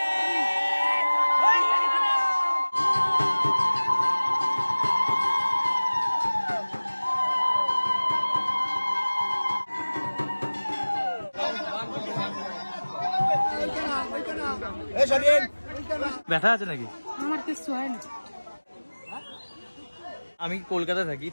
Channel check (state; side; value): inverted; both; correlation -1.00